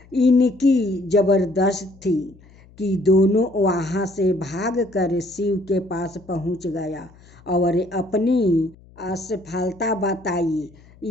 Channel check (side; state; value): left; noise; hum, 25 dB below the sound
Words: इनकी जबरदस्त थी कि दोनों वहां से भागकर शिव के पास पहुंच गया और अपनी असफलता बताई।